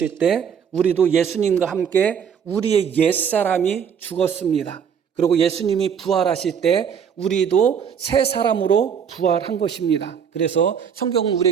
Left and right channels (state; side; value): quieter; left; 7.5 dB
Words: 때 우리도 예수님과 함께 우리의 옛사람이 죽었습니다. 그리고 예수님이 부활하실 때 우리도 새 사람으로 부활한 것입니다. 그래서 성경은